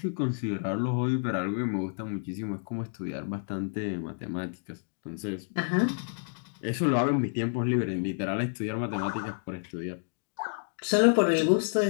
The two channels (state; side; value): silent; right; digital silence